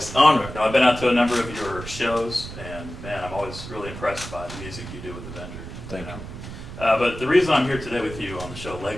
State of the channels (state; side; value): noise; right; rumble, 11 dB below the sound